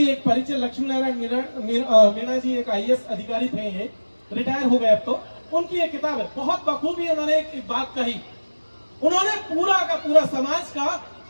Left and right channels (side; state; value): both; inverted; correlation -1.00